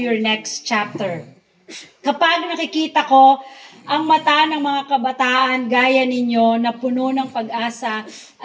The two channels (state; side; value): identical; both; correlation 1.00